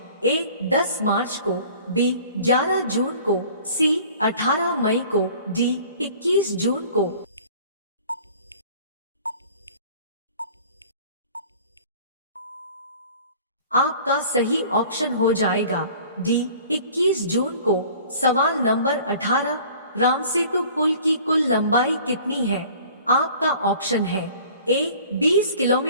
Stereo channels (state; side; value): inverted; both; correlation -0.48